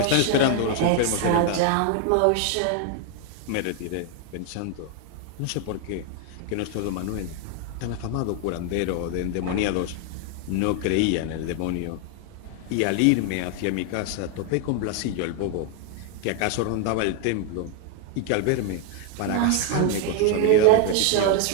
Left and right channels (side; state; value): both; different; correlation 0.00